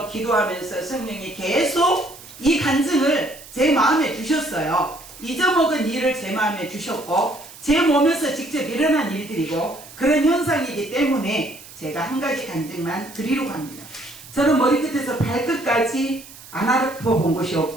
기도하면서 성령이 계속 이 간증을 제 마음에 주셨어요. 잊어먹은 일을 제 마음에 주셨고 제 몸에서 직접 일어난 일들이고 그런 현상이기 때문에 제가 한 가지 간증만 드리려고 합니다. 저는 머리끝에서 발끝까지 안 아파본 곳이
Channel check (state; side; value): noise; right; hiss, 18 dB below the sound